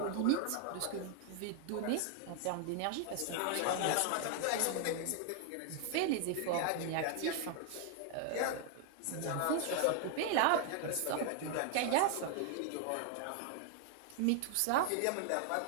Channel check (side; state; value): both; different; correlation 0.00